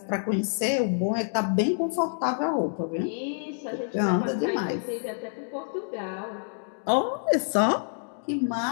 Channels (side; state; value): right; silent; digital silence